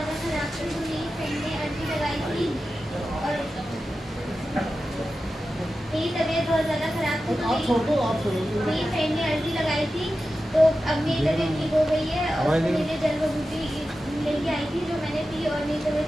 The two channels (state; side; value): normal; both; correlation 0.92